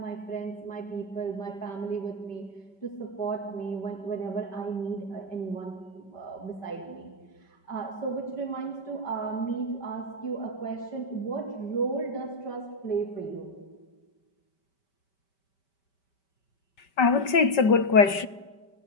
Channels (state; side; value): late; right; 5.2 ms